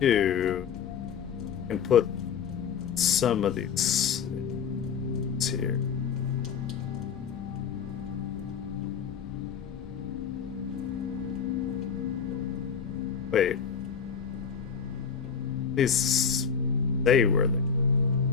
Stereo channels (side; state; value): right; quieter; 6.7 dB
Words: can put some of these here. Wait. These they were